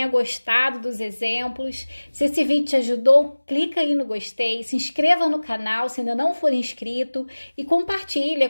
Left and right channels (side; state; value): both; inverted; correlation -1.00